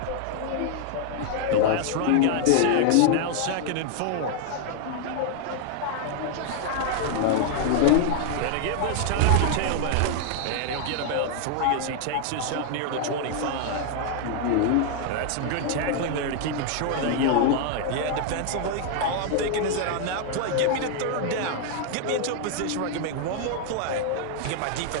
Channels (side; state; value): both; different; correlation 0.00